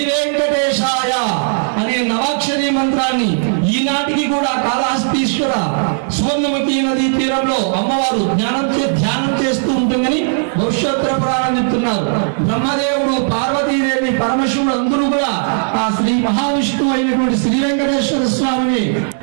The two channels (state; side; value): silent; left; 69 dB below the other